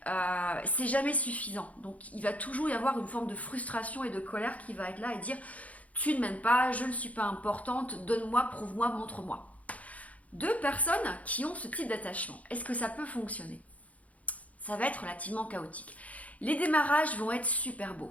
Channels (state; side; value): late; right; 0.069 ms